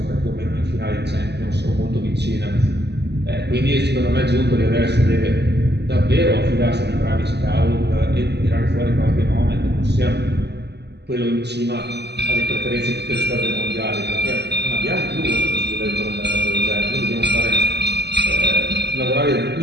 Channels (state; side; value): late; left; 0.49 ms